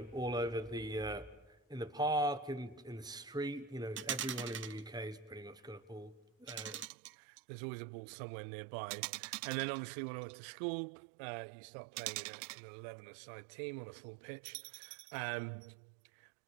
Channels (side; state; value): left; drops out; at 6.9 s